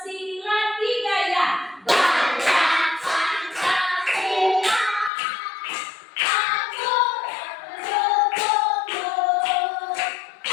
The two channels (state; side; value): drops out; right; at 5.1 s